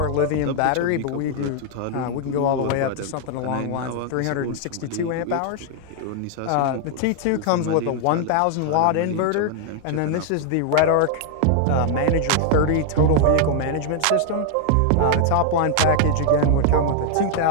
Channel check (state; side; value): different; both; correlation 0.00